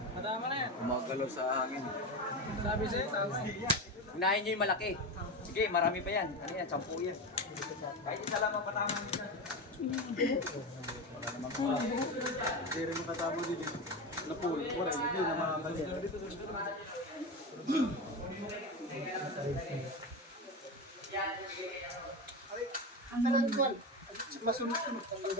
Madama na yan. Umagalaw sa hangin. Sabi sa'yo, tama eh. Unahin nyo yung malaki. Sige, marami pa yan. Ano yan, 10 yan. Kahit isa lang ang patama nyo. Hindi rin makatama dito. Napul. Wala, hindi na makakalit. Kalan ko. Masunod-sunod. Ang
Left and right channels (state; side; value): normal; both; correlation 0.20